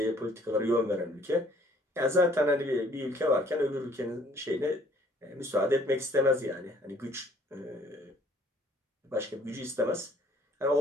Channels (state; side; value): normal; both; correlation 0.59